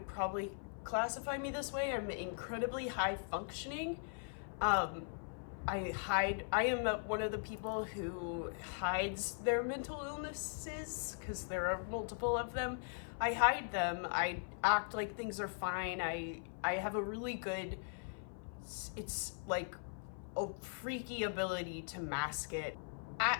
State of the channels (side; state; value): right; silent; 51 dB below the other